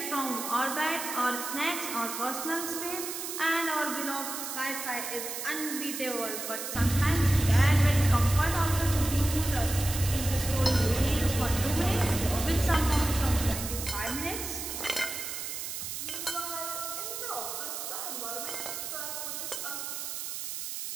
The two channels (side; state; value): right; noise; hiss, 6 dB below the sound